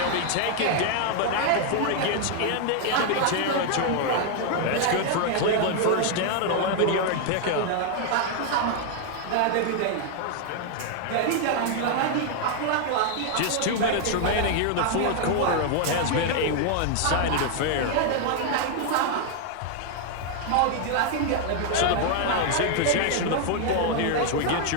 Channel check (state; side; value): different; both; correlation 0.00